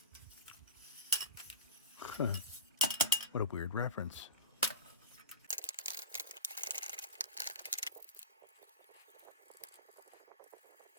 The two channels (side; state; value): both; inverted; correlation -0.31